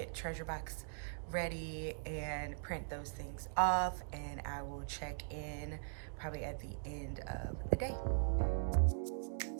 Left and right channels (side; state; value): left; silent; digital silence